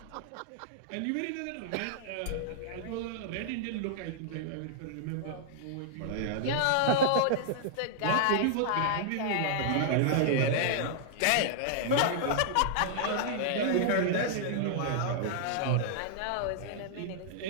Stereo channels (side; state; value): both; different; correlation -0.01